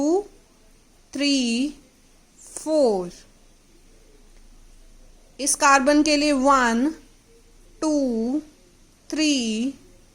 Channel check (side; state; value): both; identical; correlation 1.00